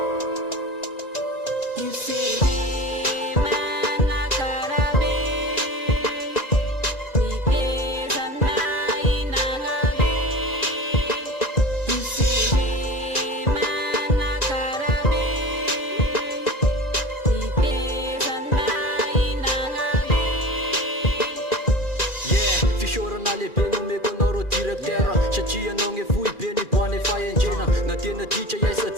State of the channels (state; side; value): late; left; 2.4 ms